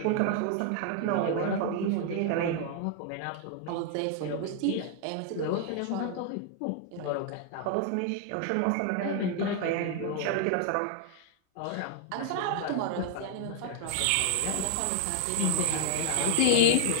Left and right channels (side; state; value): both; different; correlation 0.00